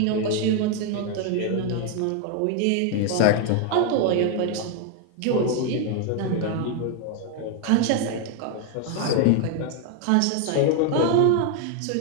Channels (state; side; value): different; both; correlation 0.01